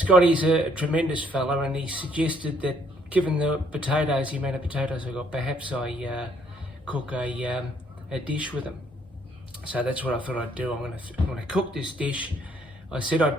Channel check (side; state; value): both; normal; correlation 0.66